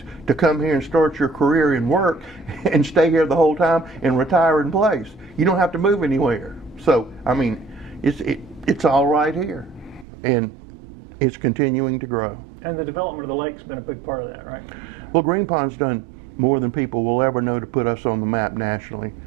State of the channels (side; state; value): left; drops out; at 10.1 s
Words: to come here and start your career and work and stay here the whole time and retire in place. You don't have to move anywhere. So, I mean, it's all right here. And it's continuing to grow. And the development of the lake's been a big part of that, right? Well, Green Pond's done more than people will ever know to put us on the map nationally.